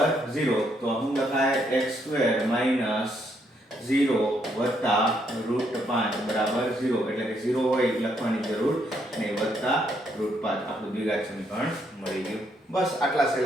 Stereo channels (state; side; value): normal; both; correlation 0.73